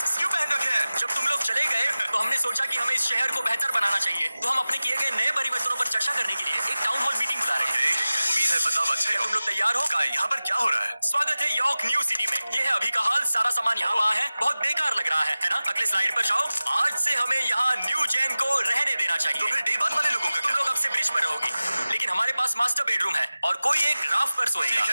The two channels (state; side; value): inverted; both; correlation -0.96